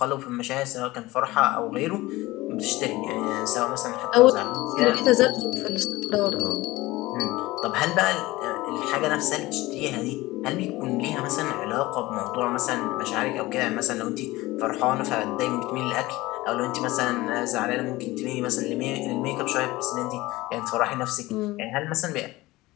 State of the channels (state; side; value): quieter; right; 19.3 dB